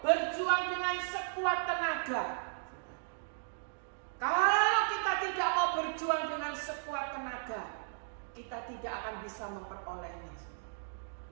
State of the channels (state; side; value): silent; left; digital silence